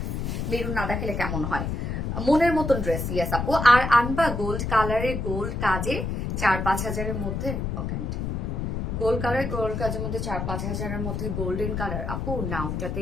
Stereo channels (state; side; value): noise; left; rumble, 2 dB below the sound